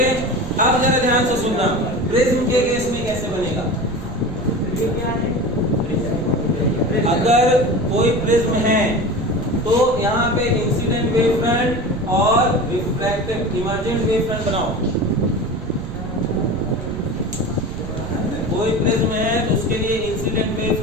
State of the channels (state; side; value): noise; right; rumble, 9 dB below the sound